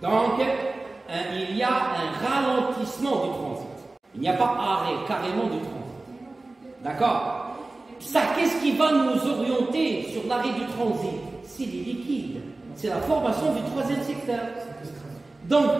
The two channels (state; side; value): quieter; left; 3.1 dB